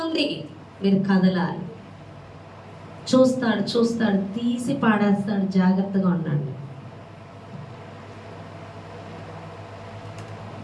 ఉంది, మీరు కదలాలి. చూస్తాడు, తీసి పాడేస్తాడు. జాగ్రత్తగా ఉండండి.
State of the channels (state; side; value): identical; both; correlation 1.00